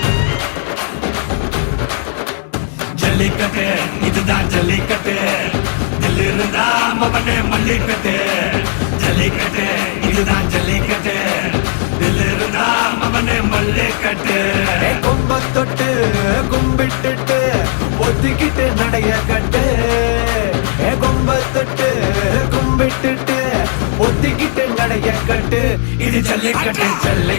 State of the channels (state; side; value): silent; right; digital silence